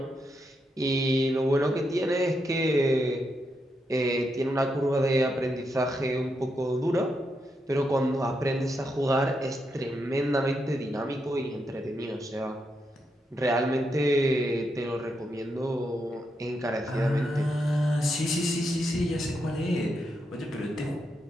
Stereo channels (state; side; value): normal; both; correlation 0.82